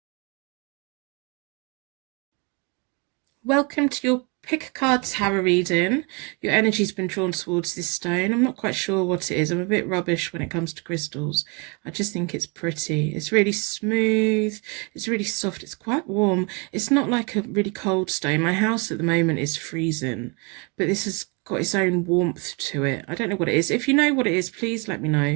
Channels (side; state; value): left; quieter; 32.0 dB